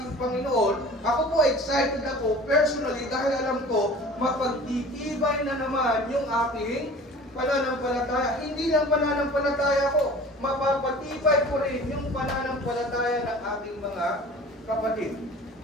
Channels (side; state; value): both; normal; correlation 0.43